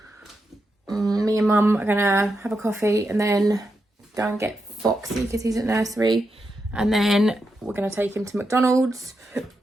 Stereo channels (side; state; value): both; normal; correlation 0.86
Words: Me and Mum are gonna have a coffee and then go and get Foxy because he's at nursery, and then we're gonna take him to McDonald's,